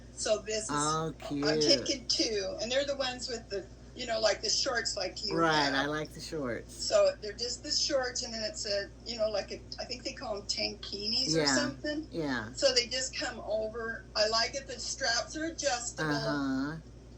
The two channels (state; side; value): identical; both; correlation 1.00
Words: So this is, cute. I'm taking two, and they're the ones with the, you know, like the shorts like you have. I like the shorts. So they're just the shorts, and then it's a, you know, like I think they call them tankinis or something. Yeah. So they just come over. I like it. The straps are adjustable.